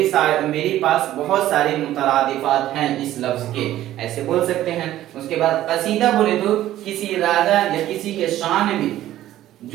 पास बहुत सारे मुतरादिफात हैं इस लफ्ज के, ऐसे बोल सकते हैं। उसके बाद कसीदा बोले तो किसी राजा या किसी के शान में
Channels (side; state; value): left; quieter; 13.7 dB